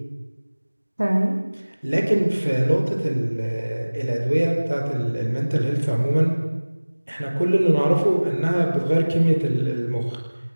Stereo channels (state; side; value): inverted; both; correlation -1.00